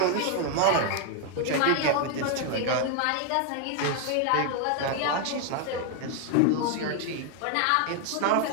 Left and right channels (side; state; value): both; different; correlation 0.00